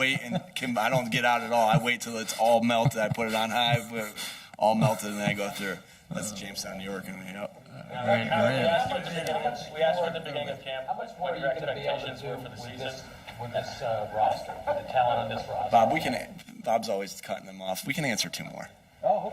and I don't get out at all. I wait till it's all melted. I put it on high, all melted, and then I go through. That's Jamestown, New York, and We asked you at the beginning of camp what your expectations were for the season with this roster, with the talent on this roster. Bob's always cutting them off. We can answer 2 more. Oh,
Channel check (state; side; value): identical; both; correlation 1.00